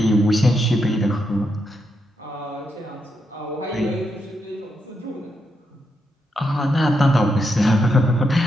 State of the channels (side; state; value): both; normal; correlation 0.82